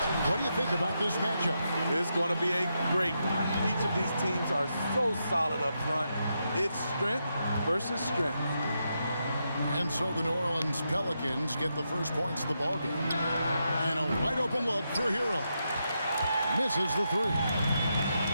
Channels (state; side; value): inverted; both; correlation -0.84